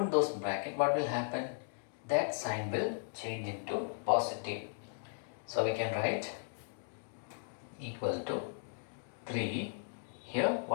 those bracket, what will happen? That sign will change into positive. So we can write equal to 3. Here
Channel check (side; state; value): right; silent; digital silence